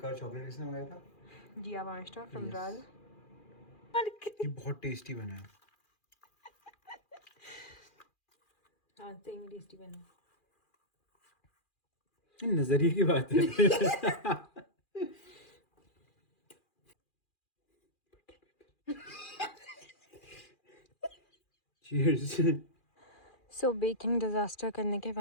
चॉकलेट किसने मंगाया था? जिया मास्टर फ्रॉम Yes. राज। ये बहुत टेस्टी बना है। हाँ सही में टेस्टी बना। ये नजरिए की बात है। Cheers. सो बेकिंग डिज़ास्टर करने के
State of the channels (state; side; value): late; right; 2.4 ms